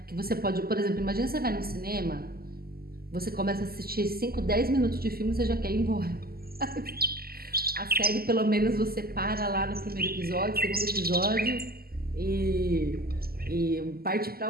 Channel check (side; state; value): left; late; 0.44 ms